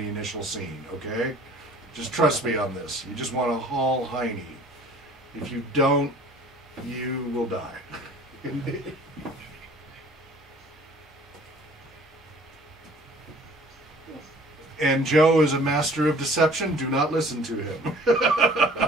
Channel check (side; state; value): both; normal; correlation 0.51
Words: the initial scene, okay? Just trust me on this. You just want to haul Heine. If you don't, you will die. And Joe is a master of deception. Do not listen to him.